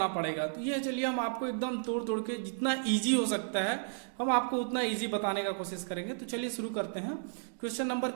पड़ेगा। तो ये चलिए हम आपको एकदम तोड़ तोड़ के जितना इजी हो सकता है हम आपको उतना इजी बताने का कोशिश करेंगे। तो चलिए शुरू करते हैं क्वेश्चन नंबर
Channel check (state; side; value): silent; left; digital silence